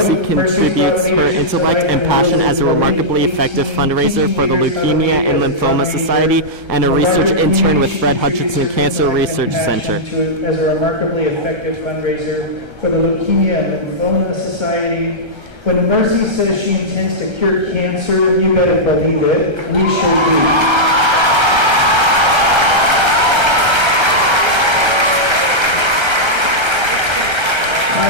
contributes her intellect and passion as a remarkably effective fundraiser for the Leukemia and Lymphoma Society and a research intern with Fred Hutchinson Cancer Research Center. As a remarkably effective fundraiser for the Leukemia and Lymphoma Society. When Mercy says she intends to cure cancer, you better believe it. We sure do.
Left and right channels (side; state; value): left; late; 1.3 ms